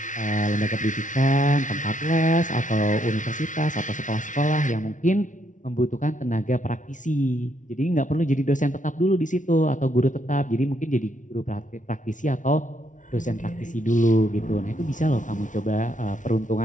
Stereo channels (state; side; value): late; right; 0.37 ms